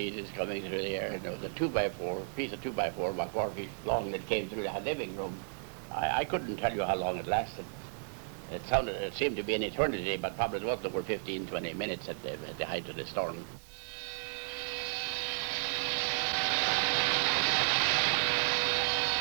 coming through the air. And there was a 2x4, piece of 2x4 about 4 feet long that came through the living room. I couldn't tell you how long it lasted. It seemed to be an eternity, but probably it was over 15, 20 minutes at the height of the storm.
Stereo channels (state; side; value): silent; left; digital silence